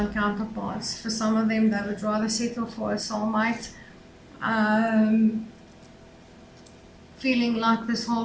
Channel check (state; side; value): identical; both; correlation 1.00